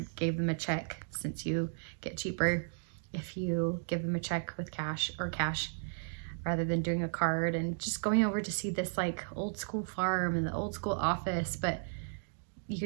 gave them a check, since you get cheaper if you give them a check with cash rather than doing a card. And just going over to see this like old school farm and the old school office, but you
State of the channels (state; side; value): silent; left; digital silence